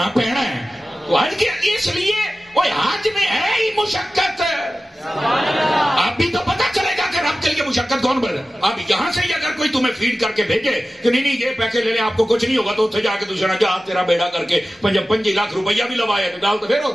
پینا ہے. تو حج کے اس لیے وہ حج میں ہے ہی مشقت. اب بھی تو پتہ چلے گا کہ رب کے لیے مشقت کون بڑھ. اب یہاں سے ہی اگر کوئی تمہیں فیڈ کر کے بھیجے کہ نہیں یہ پیسے لے لیں آپ کو کچھ نہیں ہوگا، تو اتنے جا کے دوسرا جا تیرا بیڑا کر کے 25 لاکھ روپیہ بھی لوایا تو گل تو پھر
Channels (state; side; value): normal; both; correlation 0.95